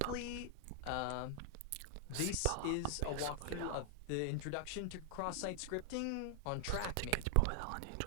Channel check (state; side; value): different; both; correlation 0.00